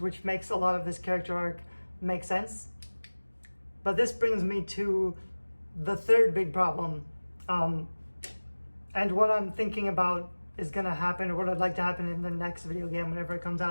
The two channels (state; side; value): inverted; both; correlation -1.00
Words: makes a lot of this character arc make sense. But this brings me to the third big problem, and what I'm thinking about is going to happen, or what I'd like to happen in the next video game whenever it comes